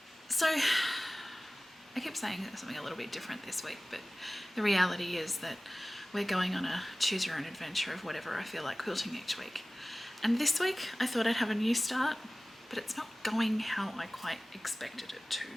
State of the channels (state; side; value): normal; both; correlation 0.98